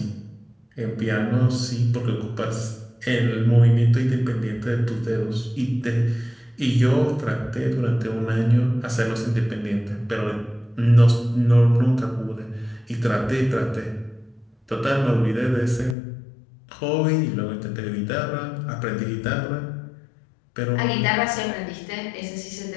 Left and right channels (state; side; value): drops out; right; at 16.0 s